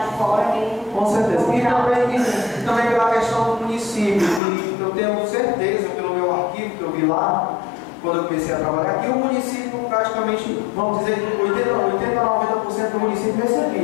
fora. Com certeza. E também pela questão do município, que eu tenho certeza, pelo meu arquivo que eu vi lá, quando eu comecei a trabalhar aqui, o município praticamente, vamos dizer, 80 a 90% do município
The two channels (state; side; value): drops out; right; at 4.4 s